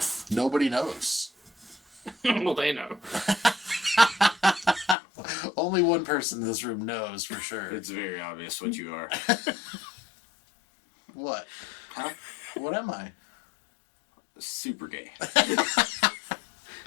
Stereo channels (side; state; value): right; drops out; at 5.0 s